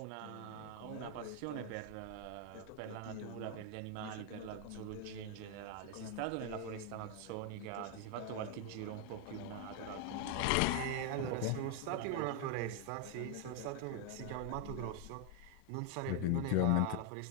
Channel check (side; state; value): both; different; correlation 0.01